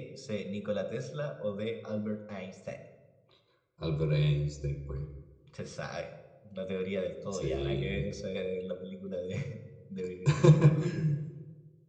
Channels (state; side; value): identical; both; correlation 1.00